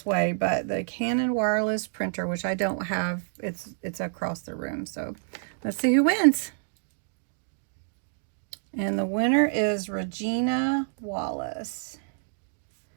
way. But the Canon wireless printer, which I don't have, it's across the room. So let's see who wins. And the winner is Regina Wallace.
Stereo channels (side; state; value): left; silent; digital silence